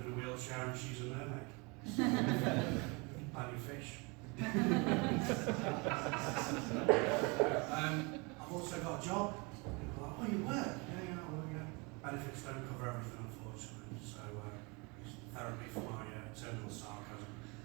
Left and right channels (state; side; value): quieter; left; 29.2 dB